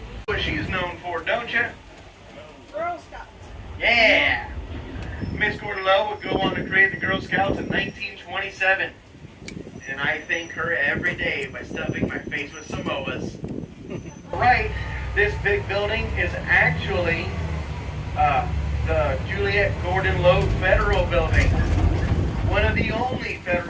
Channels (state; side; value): identical; both; correlation 1.00